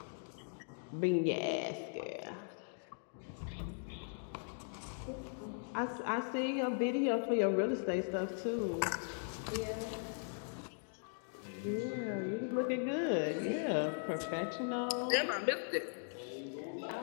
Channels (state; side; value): silent; right; digital silence